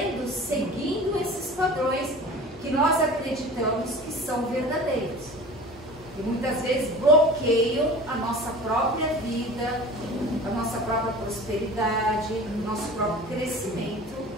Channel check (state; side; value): normal; both; correlation 0.39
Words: seguindo esses padrões que nós acreditamos que são verdadeiros. E muitas vezes bloqueiam a nossa própria vida, a nossa própria prosperidade, o nosso próprio crescimento,